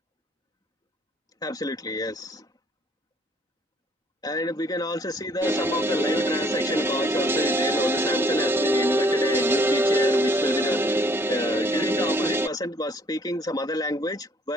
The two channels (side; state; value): both; normal; correlation 0.62